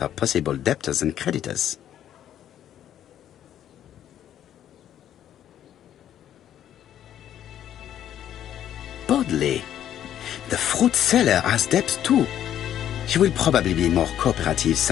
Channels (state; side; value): quieter; right; 10.8 dB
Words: possible debtors and creditors. Bodley. The fruit seller has debts too. She will probably be more cooperative